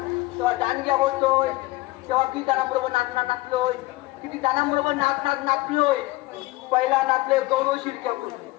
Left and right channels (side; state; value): right; quieter; 20.1 dB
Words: तेव्हा दांडग्या होतोय तेव्हा किती जणांबरोबर नाचलोय किती जणांबरोबर नाचलोय पहिला नाचलोय गौरव शिरक्याकडून